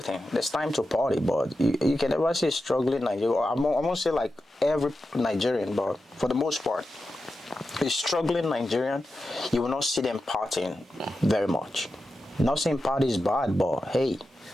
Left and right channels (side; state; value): both; normal; correlation 0.91